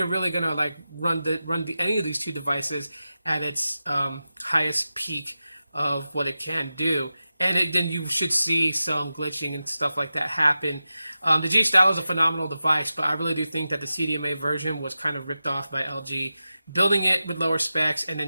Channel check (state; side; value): inverted; both; correlation -0.93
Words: really going to like run any of these two devices at its highest peak of what it can do. And then you should see some glitching and stuff like that happen. The G Stylo is a phenomenal device, but I really do think that the CDMA version was kind of ripped off by LG, building it with lower specs, and